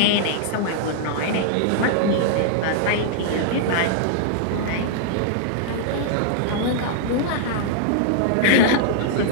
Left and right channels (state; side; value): different; both; correlation -0.01